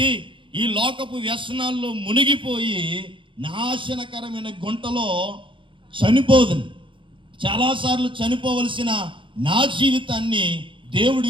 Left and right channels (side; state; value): left; late; 0.24 ms